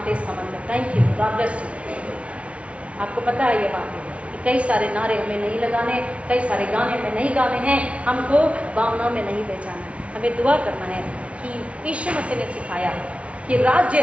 इसका मतलब thank you, God bless you. आपको पता है ये बातें, कई सारे नारे हमें नहीं लगाने, कई सारे गाने हमें नहीं गाने हैं, हमको भावनाओं में नहीं बेचाना, हमें दुआ करना है कि यीशु मसीह ने सिखाया कि राज्य,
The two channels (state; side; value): late; left; 0.062 ms